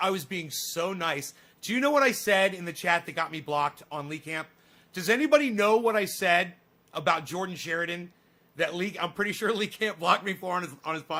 Do you know what I said in the chat that got me blocked on Lee Camp? Does anybody know what I said about Jordan Sheridan that I'm pretty sure Lee Camp blocked me for on his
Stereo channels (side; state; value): both; identical; correlation 1.00